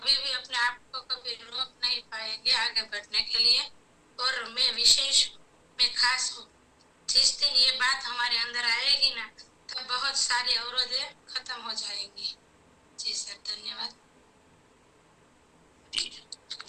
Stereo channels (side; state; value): both; identical; correlation 1.00